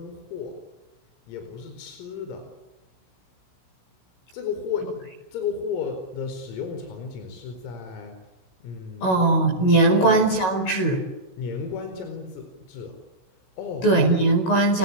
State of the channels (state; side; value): late; right; 16 ms